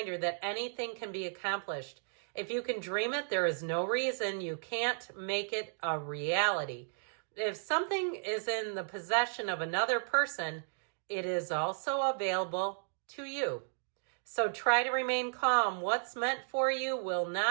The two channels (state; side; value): silent; left; digital silence